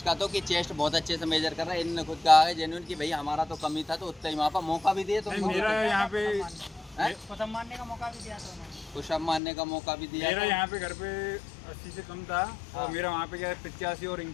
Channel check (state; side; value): drops out; right; at 9.4 s